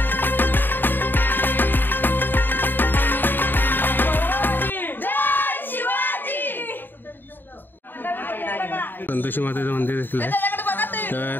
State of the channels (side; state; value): right; late; 0.093 ms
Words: संतोषी मातेचं मंदिर देखील आहे.